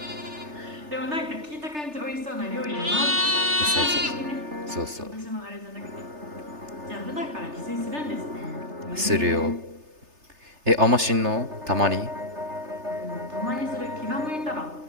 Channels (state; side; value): late; left; 3.3 ms